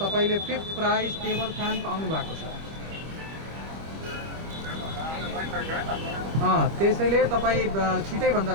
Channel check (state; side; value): late; left; 25 ms